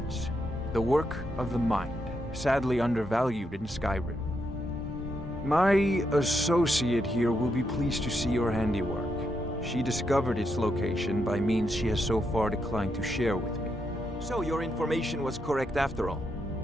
The work of the mind, sadly undervalued in Skyrim. My associate here will be pleased to see your handiwork. She discovered its location by means she has so far declined to share with me. So your information was correct after all.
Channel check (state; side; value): normal; both; correlation 0.81